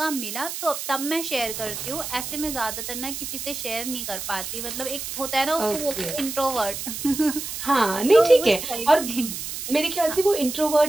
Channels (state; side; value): noise; right; hiss, 6 dB below the sound